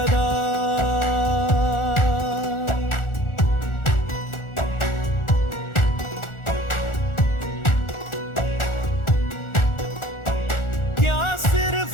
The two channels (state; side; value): late; right; 1.4 ms